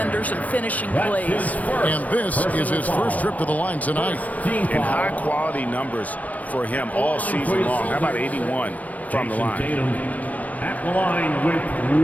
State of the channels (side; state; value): right; late; 0.075 ms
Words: and finishing plays. And this is his first trip to the line tonight. And high-quality numbers for him all season long. How about 81 from the line? Tatum at the line with